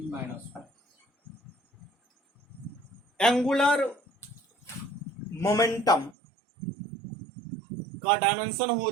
एंगुलर मोमेंटम का डायमेंशन हो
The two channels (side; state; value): left; drops out; at 6.2 s